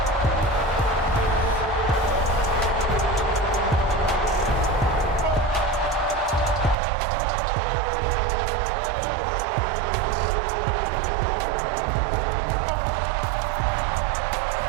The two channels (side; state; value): left; drops out; at 6.8 s